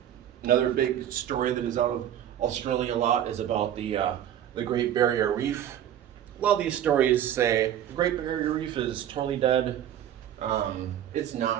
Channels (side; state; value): left; quieter; 10.8 dB